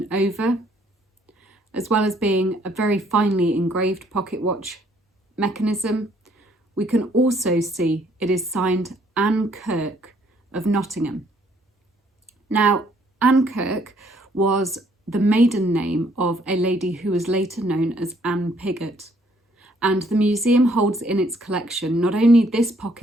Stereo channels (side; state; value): both; normal; correlation 0.65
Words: over, as well as being a very finely engraved pocket watch mechanism, we can also see it is signed Anne Kirk of Nottingham. Now, Anne Kirk was the maiden name of a lady who was later known as Anne Pigott. And the museum holds in its collection not only this